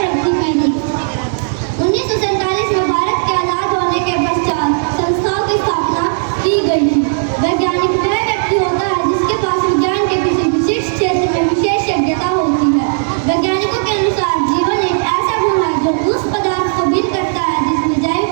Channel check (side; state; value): left; silent; digital silence